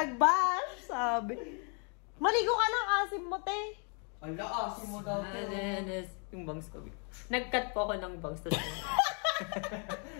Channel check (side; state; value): right; quieter; 39.2 dB